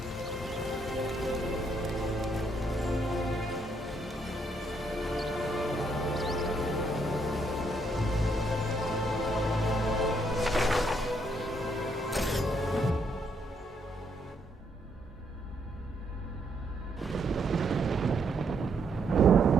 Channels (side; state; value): both; normal; correlation 0.74